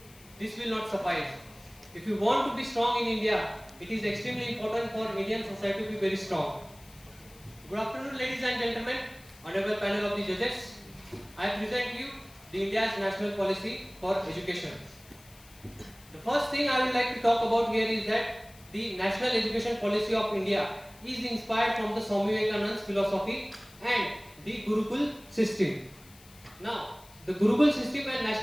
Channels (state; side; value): noise; left; hiss, 23 dB below the sound